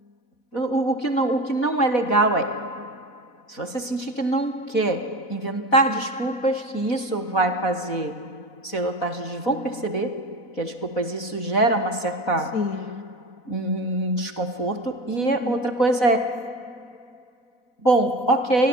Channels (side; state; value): right; late; 4.0 ms